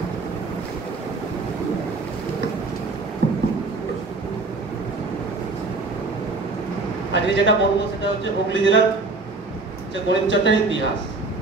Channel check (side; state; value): left; quieter; 3.6 dB